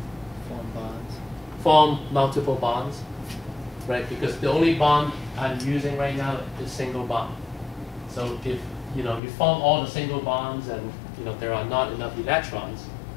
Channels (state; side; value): drops out; right; at 9.2 s